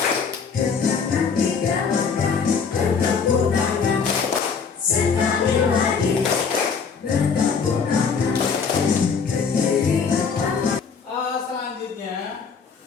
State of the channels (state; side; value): quieter; right; 5.8 dB